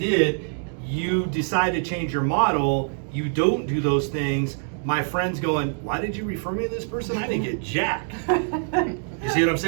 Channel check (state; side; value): silent; left; 60 dB below the other